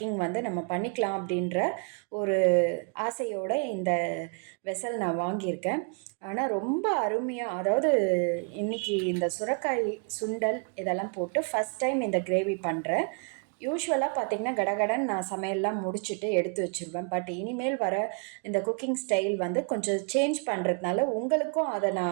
வந்து நம்ம பண்ணிக்கலாம் அப்படின்ற ஒரு ஆசையோடு இந்த வெசல் நான் வாங்கியிருக்கேன். ஆனால் ரொம்ப அருமையாக, அதாவது இன்றைக்கி இந்த சுரைக்காய் சுண்டல் இதெல்லாம் போட்டு ஃபஸ்ட் டைம் இந்த கிரேவி பண்ணுறேன். யூஸ்வலாக பார்த்திங்கன்னா கடகடன் நான் சமையல்லாம் முடிச்சுட்டு எடுத்து வச்சுருவேன். பட் இனிமேல் வர இந்த குக்கிங் ஸ்டைல் வந்து கொஞ்சம் சேஞ்ச் பண்ணுறதுனால உங்களுக்கும் அதை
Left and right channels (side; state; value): left; quieter; 37.7 dB